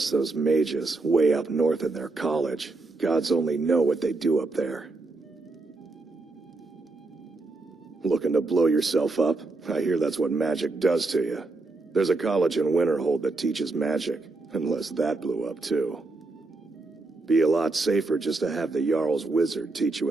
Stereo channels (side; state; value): left; quieter; 3.3 dB